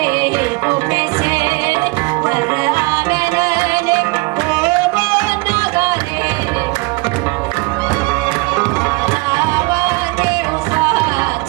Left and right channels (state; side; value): quieter; left; 26.4 dB